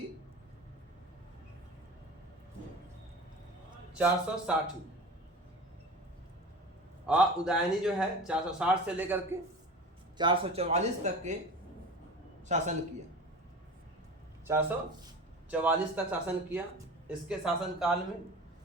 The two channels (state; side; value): normal; both; correlation 0.35